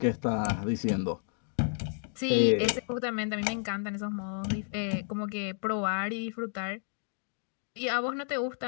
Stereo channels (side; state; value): right; silent; digital silence